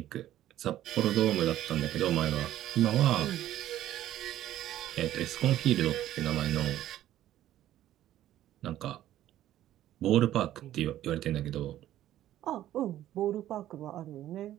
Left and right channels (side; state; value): left; quieter; 13.0 dB